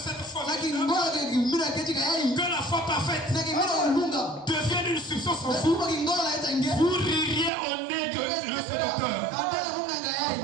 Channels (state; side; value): drops out; left; at 7.5 s